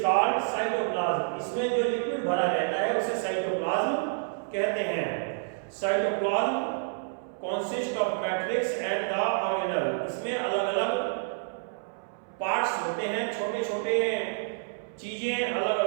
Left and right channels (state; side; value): silent; left; 59 dB below the other